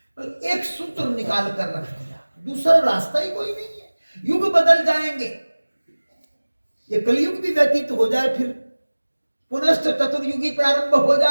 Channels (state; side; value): inverted; both; correlation -1.00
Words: तो एक सूत्र निकाल कर रख दिया, दूसरा रास्ता ही कोई नहीं है। युग बदल जाएंगे, ये कलयुग भी व्यतीत हो जाए, फिर पुनश्च चतुर्युगी प्रारंभ हो